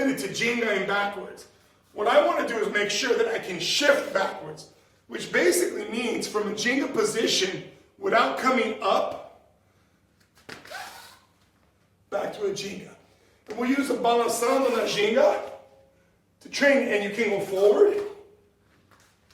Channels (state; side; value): identical; both; correlation 1.00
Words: to Ginga and backwards. What I want to do is make sure that I can shift backwards, which basically means from a Ginga position without coming up, back to a Ginga. And we'll use a Palmada da Ginga to train, and you can go forward